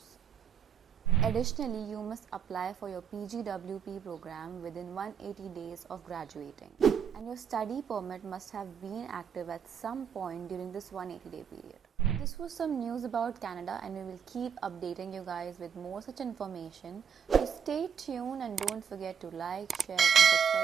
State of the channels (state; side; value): quieter; left; 7.5 dB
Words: Additionally, you must apply for your PGWP program within 180 days of graduating, and your study permit must have been active at some point during this 180-day period. This was some news about Canada, and we will keep updating you guys with more such information. So stay tuned and don't forget to like, share and